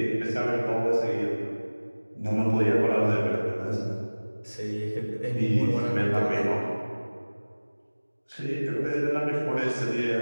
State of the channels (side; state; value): both; inverted; correlation -1.00